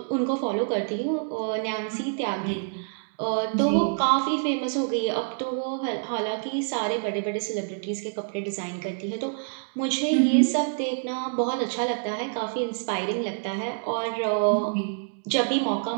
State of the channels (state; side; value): silent; left; digital silence